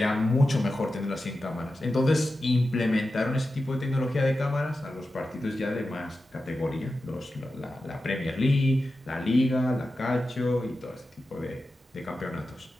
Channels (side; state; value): both; normal; correlation 0.92